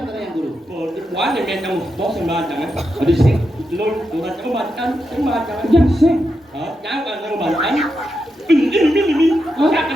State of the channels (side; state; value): both; normal; correlation 0.86